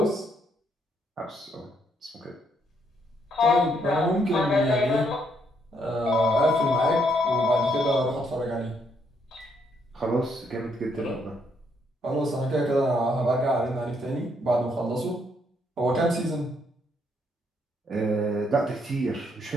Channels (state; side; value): normal; both; correlation 0.73